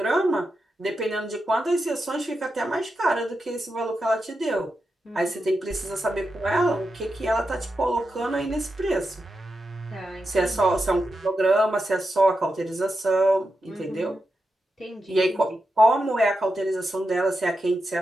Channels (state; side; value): normal; both; correlation 0.88